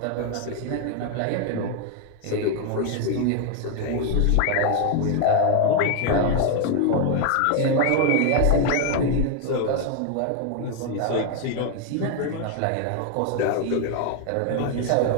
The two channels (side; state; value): both; different; correlation 0.01